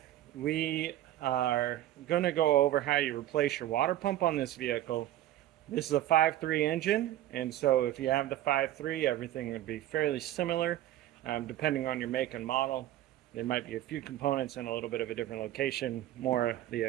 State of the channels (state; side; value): quieter; left; 13.6 dB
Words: we are going to go over how you replace your water pump on this vehicle. This is a 5.3 engine, and so if you have the 5.3, everything would be fairly similar. Depending on your make and model, there might be a few components in a little bit of a different location, more of the